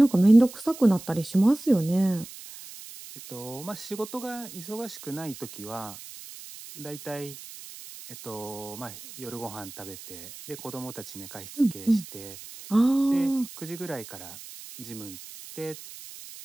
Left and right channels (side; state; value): right; noise; hiss, 15 dB below the sound